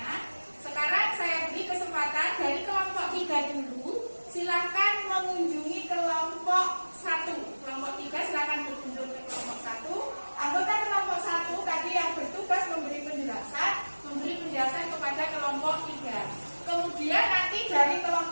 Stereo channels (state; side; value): inverted; both; correlation -1.00